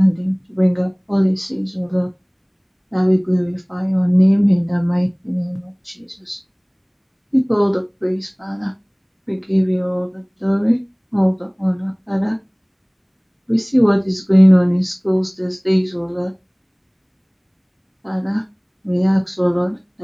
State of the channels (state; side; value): identical; both; correlation 1.00